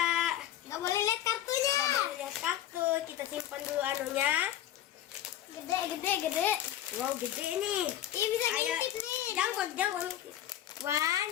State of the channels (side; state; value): right; quieter; 12.1 dB